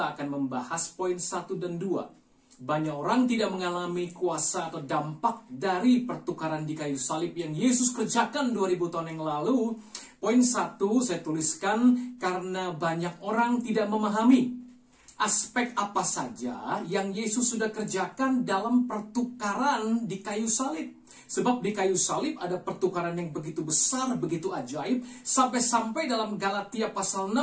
akan membahas poin 1 dan 2. Banyak orang tidak mengalami kuasa atau dampak dari pertukaran di kayu salib yang Yesus kerjakan 2000 tahun yang lalu. Poin 1 saya tuliskan karena banyak orang tidak memahami aspek apa saja yang Yesus sudah kerjakan dalam pertukaran di kayu salib. Sebab di kayu salib ada pertukaran yang begitu besar, begitu ajaib. Sampai-sampai dalam Galatia pasal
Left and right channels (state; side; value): identical; both; correlation 1.00